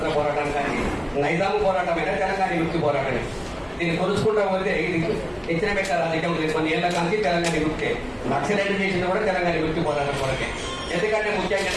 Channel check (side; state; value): both; identical; correlation 1.00